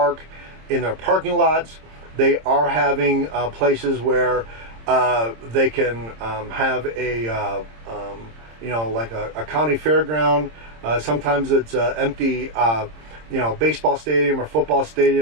in their parking lots. They are having places where they can have a like a county fairground. Sometimes it's empty, baseball stadium or football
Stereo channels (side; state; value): left; late; 26 ms